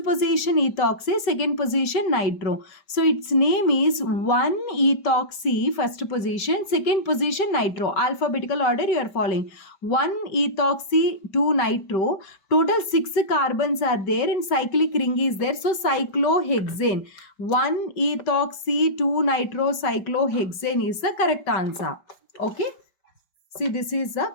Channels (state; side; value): late; right; 5.1 ms